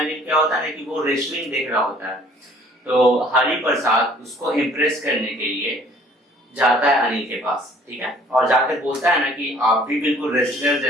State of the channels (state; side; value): normal; both; correlation 0.56